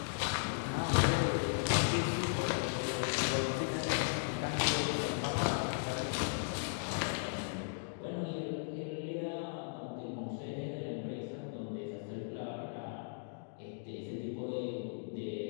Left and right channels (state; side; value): silent; right; digital silence